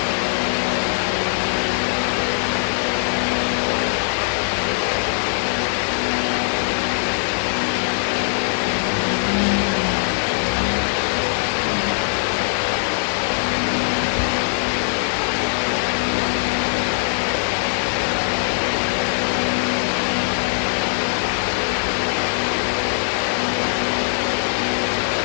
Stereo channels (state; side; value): silent; right; 57 dB below the other